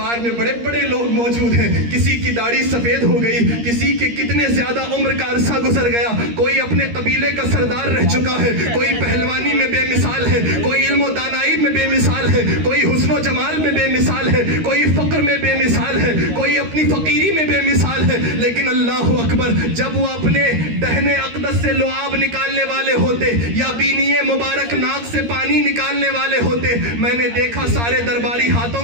میں بڑے بڑے لوگ موجود ہیں، کسی کی داڑھی سفید ہو گئی، کسی کے کتنے زیادہ عمر کا عرصہ گزر گیا، کوئی اپنے قبیلے کا سردار رہ چکا ہے، کوئی پہلوانی میں بے مثال ہے، کوئی علم و دانائی میں بے مثال ہے، کوئی حسن و جمال میں بے مثال ہے، کوئی فقر میں بے مثال ہے، کوئی اپنی فقیری میں بے مثال ہے، لیکن اللہ اکبر جب وہ اپنے دہنے اقدس سے لعاب نکالنے والے ہوتے یا بینی مبارک ناک سے پانی نکالنے والے ہوتے، میں نے دیکھا سارے درباری ہاتھوں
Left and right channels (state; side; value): late; left; 13 ms